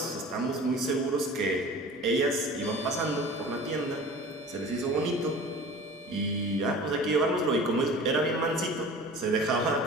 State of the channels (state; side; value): normal; both; correlation 0.40